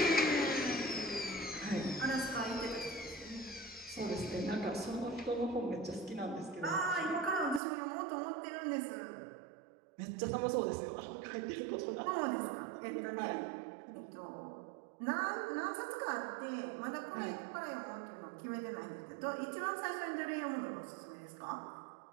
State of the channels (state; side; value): drops out; left; at 7.6 s